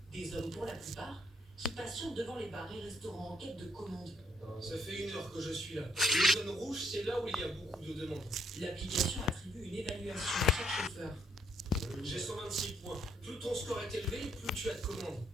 Des hommes pour la plupart qui patientent devant les bars et restaurants en quête de commandes. Ça fait 1 heure que je suis là. Les zones rouges, c'est là où il y a beaucoup de demandes. L'application attribue une évaluation à chaque chauffeur. J'ai 126 points. Plus ton score est élevé, plus tu as de commandes.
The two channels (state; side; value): normal; both; correlation 0.70